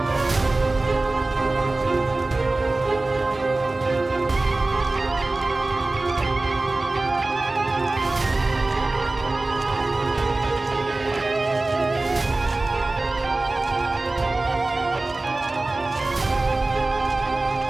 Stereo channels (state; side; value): quieter; left; 3.1 dB